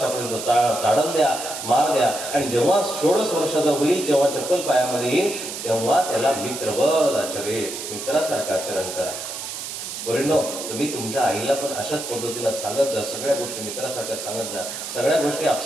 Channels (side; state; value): right; noise; hiss, 7 dB below the sound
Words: ताडण द्या, मार द्या. आणि जेव्हा 16 वर्षाचा होईल, जेव्हा चप्पल पायामध्ये येईल, तेव्हा त्याला मित्रवत आचरे, मित्रासारखं आचरण करा. परिणो, तुम्ही तुमच्या आईला पण अशाच पद्धतीनं सांगत जा, सगळ्या गोष्टी मित्रासारख्या सांगत जा. सगळ्या गोष्टी